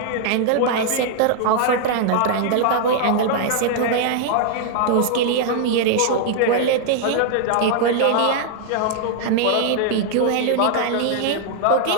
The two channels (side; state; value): both; different; correlation 0.00